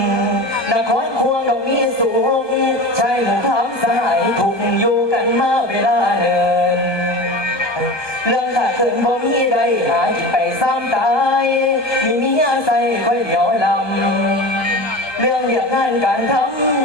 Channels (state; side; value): late; right; 1.2 ms